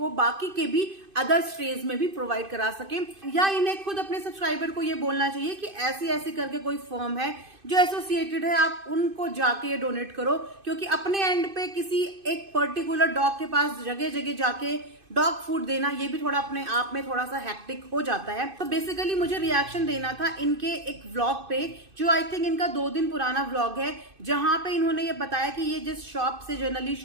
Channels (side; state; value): left; late; 2.5 ms